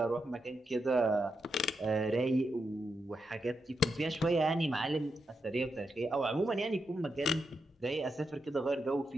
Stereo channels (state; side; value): normal; both; correlation 0.85